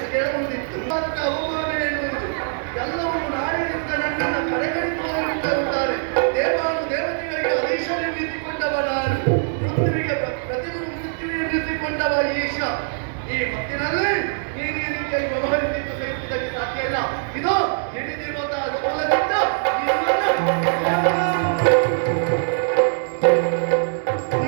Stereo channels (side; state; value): left; silent; digital silence